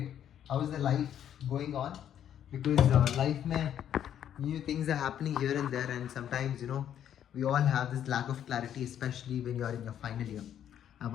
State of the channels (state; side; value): quieter; right; 10.0 dB